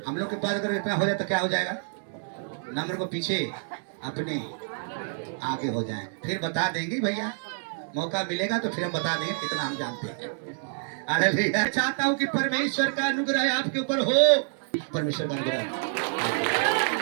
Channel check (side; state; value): left; silent; digital silence